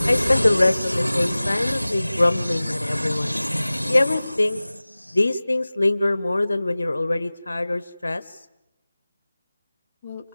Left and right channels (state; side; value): inverted; both; correlation -0.98